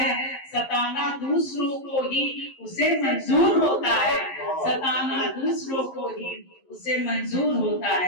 सताना दूसरों को ही उसे मंजूर होता है, सताना दूसरों को ही उसे मंजूर होता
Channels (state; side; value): late; right; 11 ms